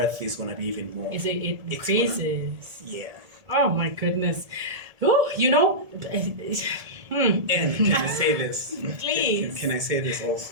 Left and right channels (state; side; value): late; left; 1.7 ms